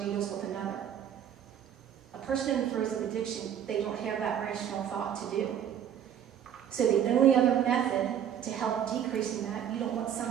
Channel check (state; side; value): quieter; left; 9.4 dB